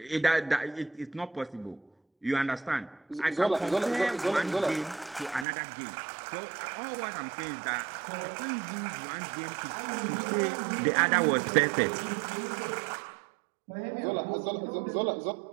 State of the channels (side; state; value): left; drops out; at 5.5 s